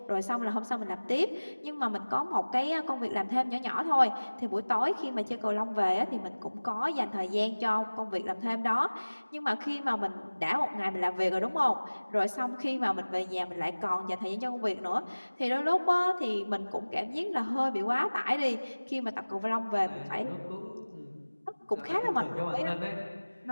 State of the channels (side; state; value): both; inverted; correlation -1.00